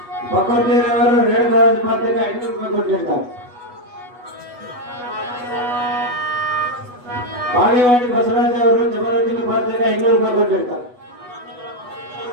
ಪಕೋಟಿಯವರು ರೇಣುಕಾರಾಜ್ ಪಾತ್ರೆಗೆ 500 ರೂಪಾಯಿ ಕೊಟ್ಟಿರ್ತಾರೆ. ಬಾಗೇವಾಡಿ ಬಸವರಾಜ್ ಅವರು ಜಬರದಸ್ತಿ ಪಾತ್ರೆಗೆ 500 ರೂಪಾಯಿ ಕೊಟ್ಟಿರ್ತಾರೆ.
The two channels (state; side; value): late; left; 8.2 ms